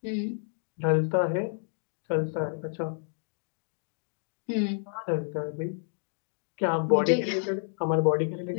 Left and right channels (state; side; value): silent; right; digital silence